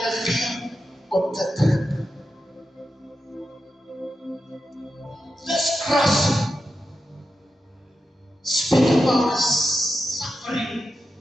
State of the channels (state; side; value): normal; both; correlation 0.89